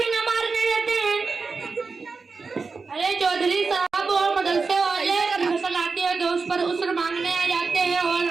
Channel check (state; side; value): quieter; left; 4.5 dB